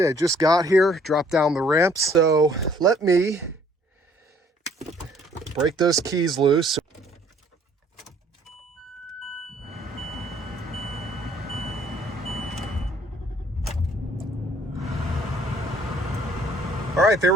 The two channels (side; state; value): both; normal; correlation 0.60